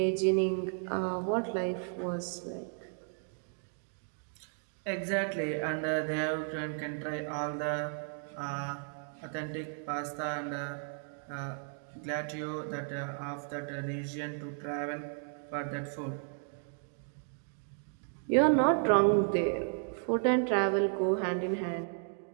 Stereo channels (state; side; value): silent; left; 55 dB below the other